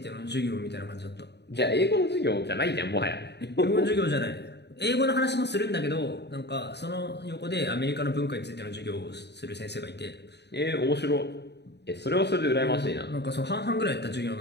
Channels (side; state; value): right; late; 0.49 ms